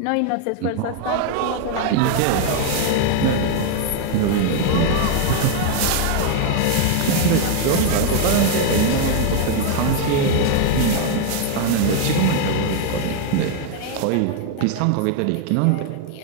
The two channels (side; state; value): both; different; correlation 0.00